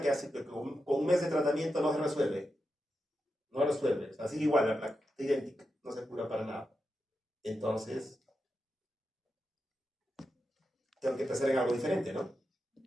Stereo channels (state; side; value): normal; both; correlation 0.88